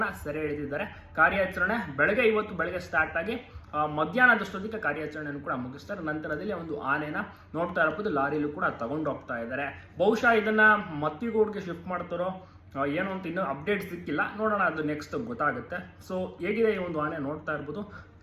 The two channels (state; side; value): identical; both; correlation 1.00